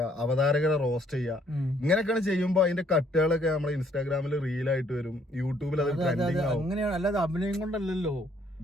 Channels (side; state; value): both; normal; correlation 0.65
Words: അവതാരകരെ റോസ്റ്റ് ചെയ്യുക. ഇങ്ങനെയൊക്കെയാണ് ചെയ്യുമ്പോ അതിന്റെ കട്ടുകളൊക്കെ നമ്മളെ ഇൻസ്റ്റാഗ്രാമിൽ റീലായിട്ട് വരും, യൂട്യൂബിൽ അത് ട്രെൻഡിങ് ആവും. അങ്ങനെയാണ്, അല്ലാതെ അഭിനയം കൊണ്ടല്ലോ.